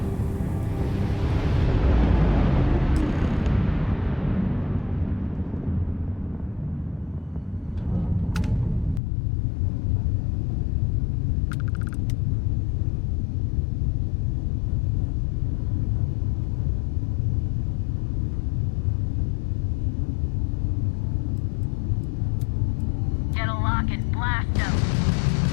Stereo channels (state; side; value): drops out; right; at 9.0 s